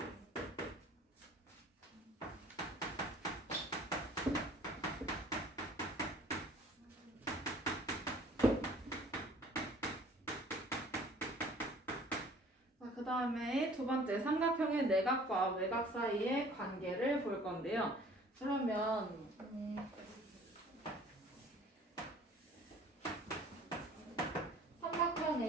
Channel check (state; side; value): normal; both; correlation 0.52